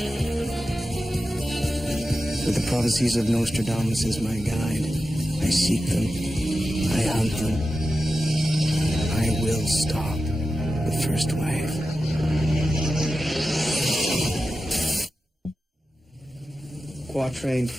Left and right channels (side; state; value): both; normal; correlation 0.92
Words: With the prophecies of Nostradamus as my guide, I seek them, I hunt them. I will stop the first wave. Quatrain